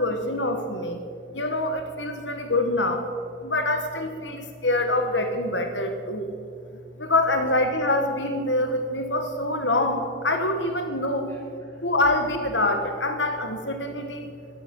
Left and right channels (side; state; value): both; normal; correlation -0.10